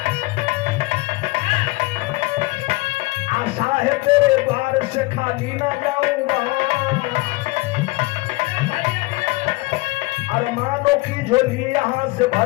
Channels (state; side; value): quieter; right; 23.0 dB